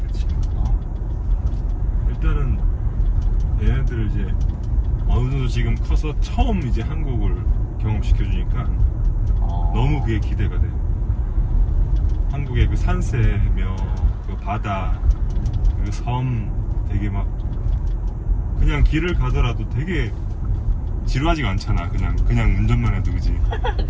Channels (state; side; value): identical; both; correlation 1.00